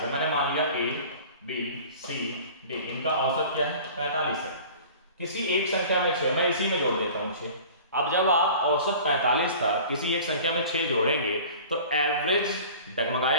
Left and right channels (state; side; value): inverted; both; correlation -0.42